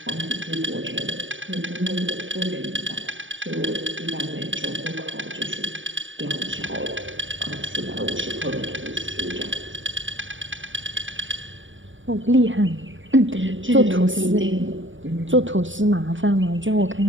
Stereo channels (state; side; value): late; left; 0.56 ms